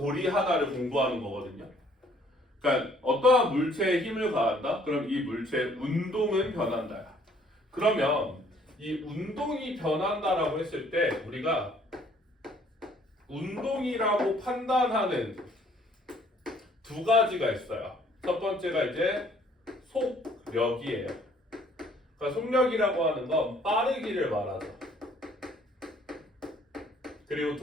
하나를 공부하는 거거든요. 그러니까 어떠한 물체에 힘을 가한다? 그럼 이 물체의 운동은 변한다. 그러면 이 운동이 변한다라고 했을 때 우리가 운동이라고 판단하는 두 가지가 있어요. 첫 번째가 이제 속력이에요. 그러니까 속력이라고 하는 건 빠르기를 말하죠. 그리고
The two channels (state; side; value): normal; both; correlation 0.61